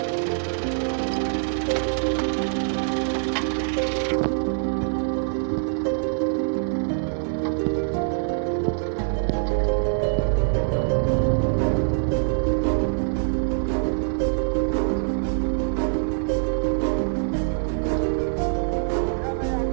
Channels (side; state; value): left; silent; digital silence